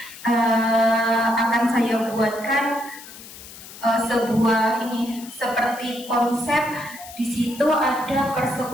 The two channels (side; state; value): left; noise; hiss, 16 dB below the sound